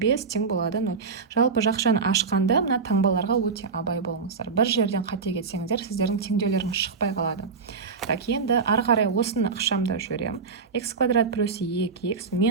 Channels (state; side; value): quieter; left; 5.0 dB